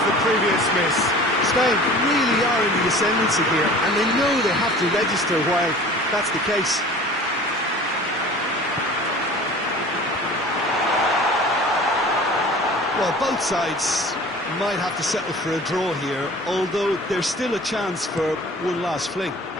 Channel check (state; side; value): normal; both; correlation 0.43